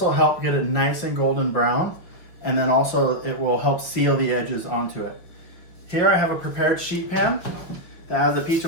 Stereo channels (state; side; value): late; right; 5.6 ms